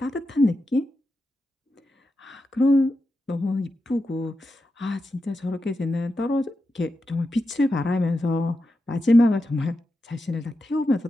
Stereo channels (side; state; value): both; normal; correlation 0.89